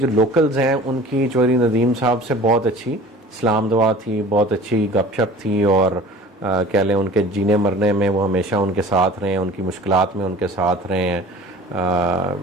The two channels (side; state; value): both; normal; correlation 0.43